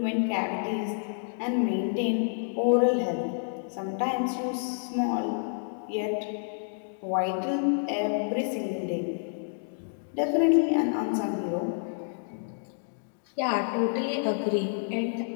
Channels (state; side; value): silent; right; digital silence